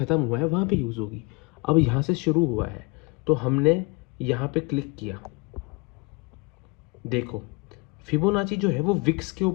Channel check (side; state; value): right; quieter; 28.4 dB